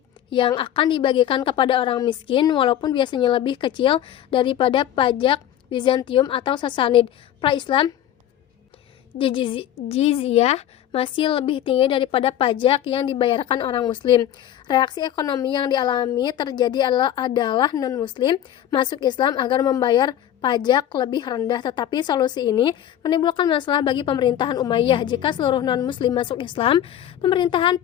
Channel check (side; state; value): right; quieter; 11.2 dB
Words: yang akan dibagikan kepada orang miskin, walaupun biasanya lebih kecil daripada pajak Bizantium atau Sasanid. Pra-Islam, jizyah masih lebih tinggi daripada pajak yang dibayarkan orang Muslim. Reaksi ekonomi yang dialami terjadi adalah non-Muslim masuk Islam agar membayar pajak lebih rendah, tetapi solusi ini menimbulkan masalah bagi pemerintahan Umayyah. Jika seluruh non-Muslim masuk Islam, pemerintahan